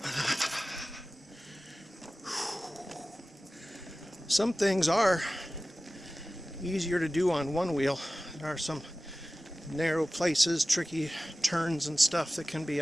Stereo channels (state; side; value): normal; both; correlation 0.96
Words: Some things are easier to do on one wheel. There are some narrow places, tricky turns and stuff that can be